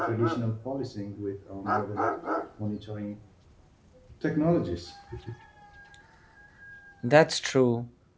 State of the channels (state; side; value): identical; both; correlation 1.00